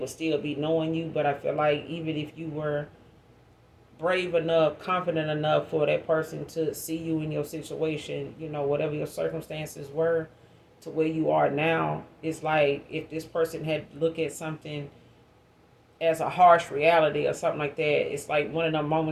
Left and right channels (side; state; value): both; identical; correlation 1.00